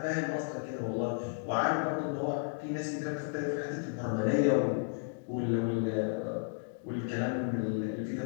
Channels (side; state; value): right; silent; digital silence